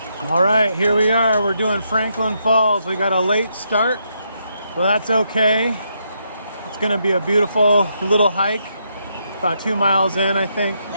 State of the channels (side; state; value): both; inverted; correlation -0.78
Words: All right, here we are. We're doing Franklin Falls. We got a late start, but that's okay. It's gonna be a beautiful little hike. About 2 miles in, I think.